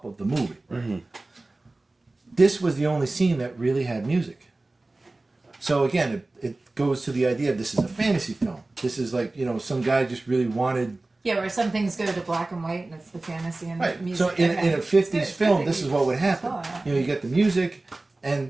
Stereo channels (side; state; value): left; quieter; 3.0 dB